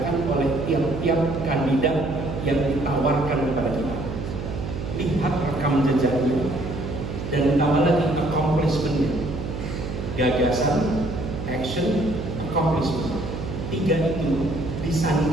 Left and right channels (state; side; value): noise; right; hum, 6 dB below the sound